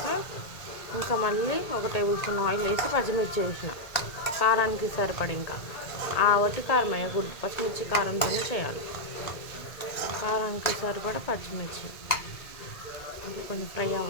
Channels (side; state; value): right; late; 1.8 ms